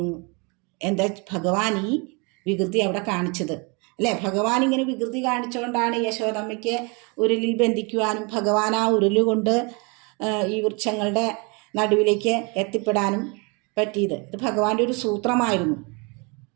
എന്താ ഭഗവാൻ ഈ വികൃതി അവിടെ കാണിച്ചത്, അല്ലേ? ഭഗവാൻ ഇങ്ങനെ വികൃതി കാണിച്ചുകൊണ്ടാണ് യശോദമ്മയ്ക്ക് ഉരുളിൽ ബന്ധിക്കുവാനും ഭഗവാൻ ആ ഉരുളുകൊണ്ട് ഈ വൃക്ഷങ്ങളുടെ നടുവിലേക്ക് എത്തിപ്പെടാനും പറ്റിയത്. ഇത് ഭഗവാന്റെ ഒരു സൂത്രമായിരുന്നു,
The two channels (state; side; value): quieter; left; 30.8 dB